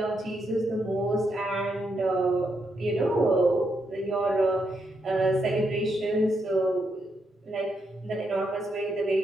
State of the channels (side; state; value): both; normal; correlation 0.80